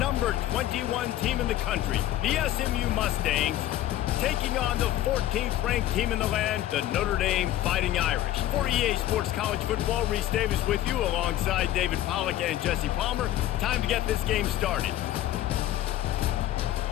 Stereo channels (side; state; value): right; quieter; 13.5 dB